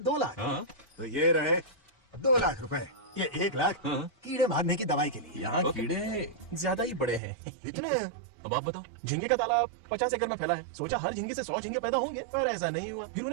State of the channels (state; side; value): drops out; left; at 7.2 s